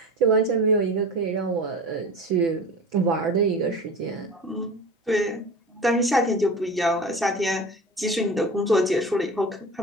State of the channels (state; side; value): normal; both; correlation 0.34